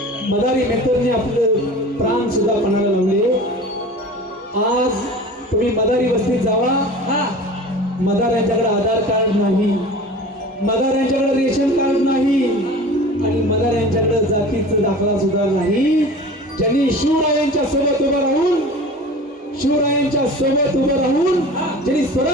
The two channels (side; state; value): both; normal; correlation 0.38